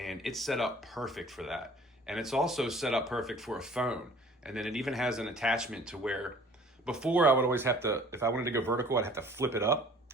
it's set up perfect for that. And it's also set up perfect for a phone. And then it even has an attachment to where, before I would always have to, if I wanted to go vertical, I'd have to flip it up,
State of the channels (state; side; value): normal; both; correlation 0.51